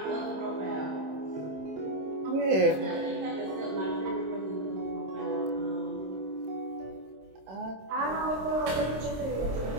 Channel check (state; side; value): late; left; 26 ms